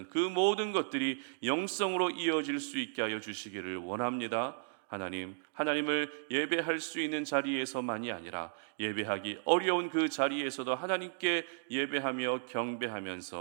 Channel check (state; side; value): silent; left; digital silence